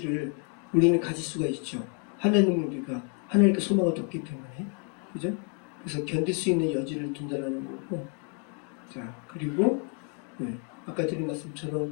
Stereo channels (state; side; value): quieter; right; 36.0 dB